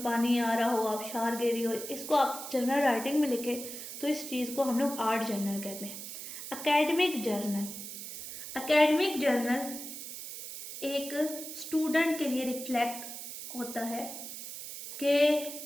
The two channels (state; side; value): noise; right; hiss, 9 dB below the sound